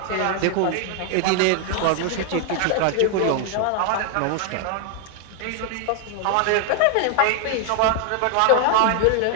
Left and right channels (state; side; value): different; both; correlation 0.00